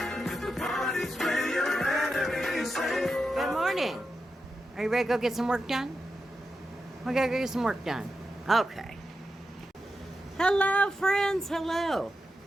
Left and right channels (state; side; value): normal; both; correlation 0.89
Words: Good morning. Are you ready to go get some work done? We gotta go get some work done. Okay. Hello, friends. Hello.